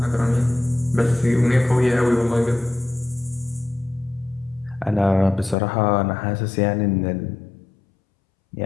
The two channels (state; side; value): drops out; right; at 5.6 s